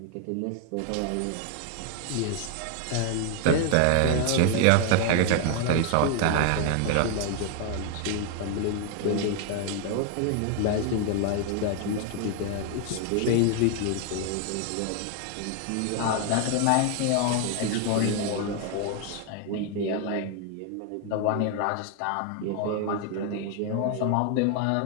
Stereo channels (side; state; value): both; different; correlation 0.00